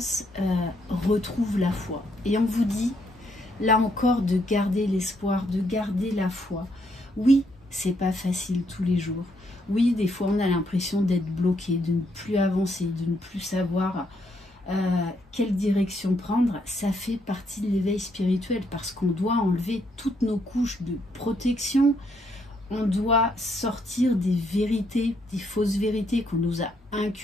retrouvent la foi. Et on vous dit, là encore, de garder l'espoir, de garder la foi. Oui, c'est pas facile tous les jours. Oui, des fois, on a l'impression d'être bloqué, de ne plus avancer, de ne plus savoir quelle direction prendre. Ça fait partie de l'éveil spirituel parce qu'on doit enlever toutes nos couches de protection. On doit sortir des vérités, des fausses vérités qu'on nous a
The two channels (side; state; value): both; normal; correlation 0.74